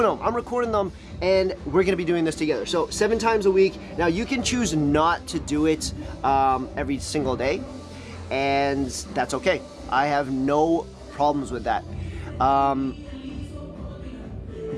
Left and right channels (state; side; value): identical; both; correlation 1.00